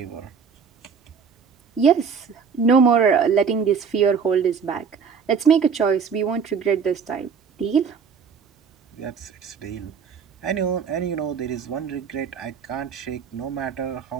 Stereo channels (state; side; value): quieter; left; 6.3 dB